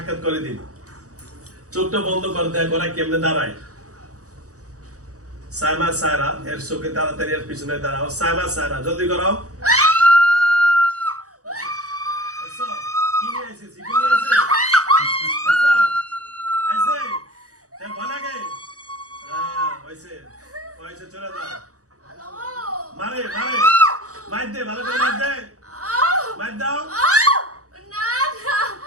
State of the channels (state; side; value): late; left; 0.66 ms